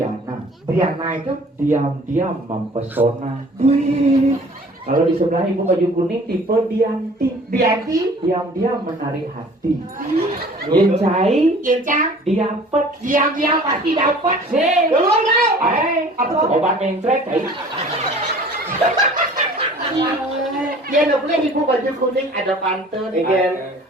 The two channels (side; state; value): both; normal; correlation 0.49